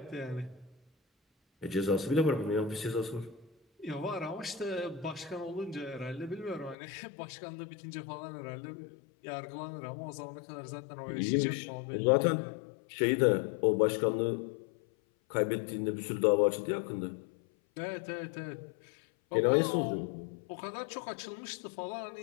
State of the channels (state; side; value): drops out; right; at 6.8 s